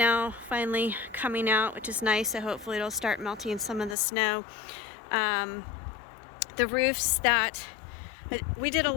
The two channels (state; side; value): drops out; right; at 4.0 s